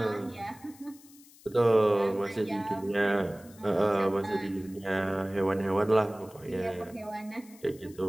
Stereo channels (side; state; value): left; noise; hiss, 24 dB below the sound